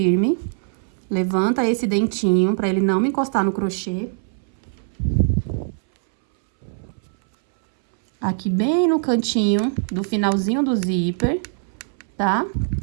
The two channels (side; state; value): left; silent; 63 dB below the other